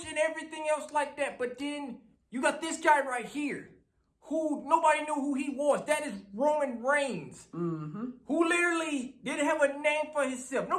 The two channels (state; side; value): identical; both; correlation 1.00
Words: and everything else like that. But then you got this guy right here, who nobody knew who he was. That is Roman Reigns, who literally didn't have a name for himself.